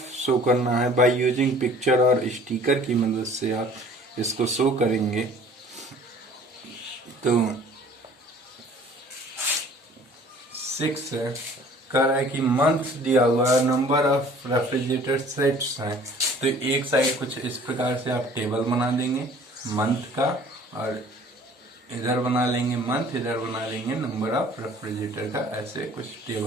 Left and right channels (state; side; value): normal; both; correlation 0.51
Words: शो करना है। बाय यूजिंग पिक्चर और स्टिकर की मदद से आप इसको शो करेंगे। तो 6 है, कह रहा है कि मंथ दिया हुआ है, नंबर ऑफ रेफ्रिजरेटर सेट्स हैं। तो एक साइड कुछ इस प्रकार से आप टेबल बना देंगे मंथ का, और इधर बना लेंगे मंथ, इधर बना लेंगे नंबर ऑफ रेफ्रिजरेटर का। ऐसे कुछ